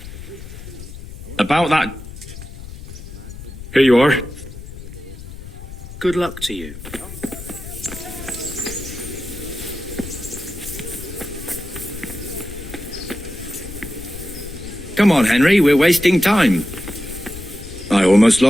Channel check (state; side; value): noise; left; rumble, 12 dB below the sound